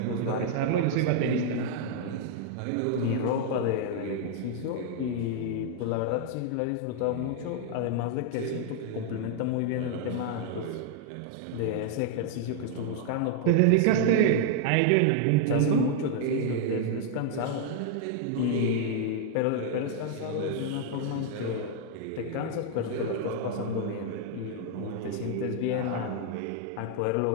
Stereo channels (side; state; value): both; different; correlation 0.00